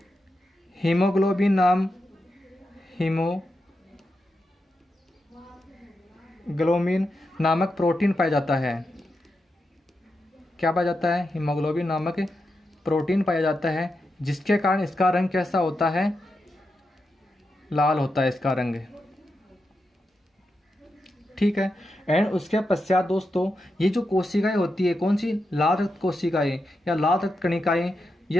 हीमोग्लोबिन हीमोग्लोबिन नामक प्रोटीन पाया जाता है। क्या पाया जाता है? हीमोग्लोबिन नामक प्रोटीन पाया जाता है, जिसके कारण इसका रंग कैसा होता है? लाल होता है इसका रंग। ठीक है। एंड उसके पश्चात दोस्तों ये जो कोशिकाएं होती है, कौन सी? लाल रक्त कोशिकाएं या लाल रक्त कणिकाएं,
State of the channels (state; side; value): normal; both; correlation 0.87